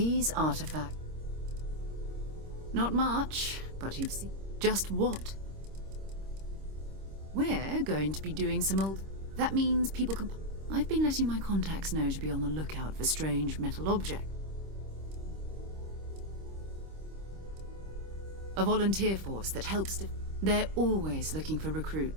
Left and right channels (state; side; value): late; left; 26 ms